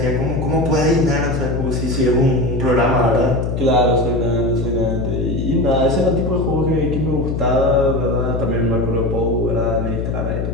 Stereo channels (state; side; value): noise; left; hum, 2 dB below the sound